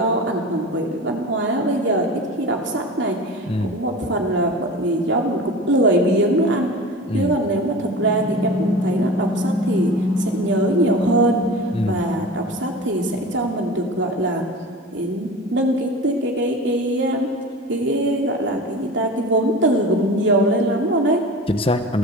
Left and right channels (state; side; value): normal; both; correlation 0.33